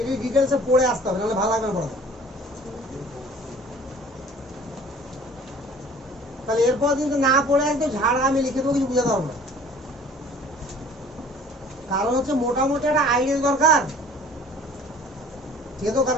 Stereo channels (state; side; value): normal; both; correlation 0.50